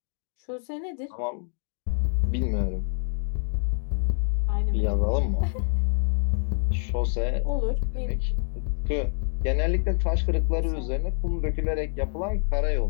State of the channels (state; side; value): silent; right; 57 dB below the other